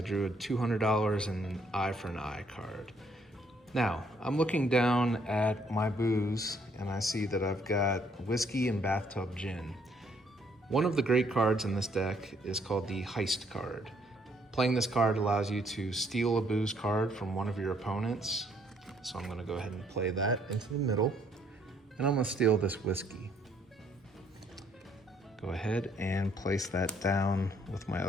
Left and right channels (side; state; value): both; normal; correlation 0.67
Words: drew a $200 and an eye for an eye card. Now, I'm looking down at my booze and I see that I've got whiskey and bathtub gin. One of the great cards in this deck is called the heist card. Playing this card allows you to steal a booze card from one of your opponents. So I'm gonna go ahead and play that into the middle. And I'm gonna steal this whiskey. Go ahead and place that down with my